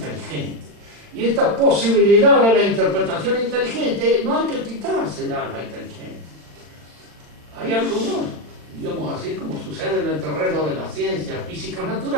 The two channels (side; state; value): left; late; 40 ms